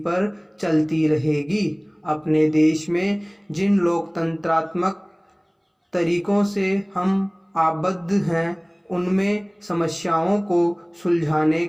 चलती रहेगी। अपने देश में जिन लोकतंत्रात्मक तरीकों से हम आबद्ध हैं, उनमें समस्याओं को सुलझाने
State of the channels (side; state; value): both; identical; correlation 1.00